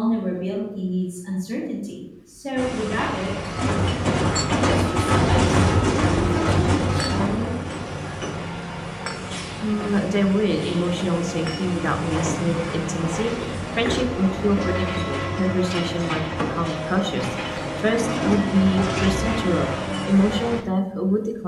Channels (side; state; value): both; identical; correlation 1.00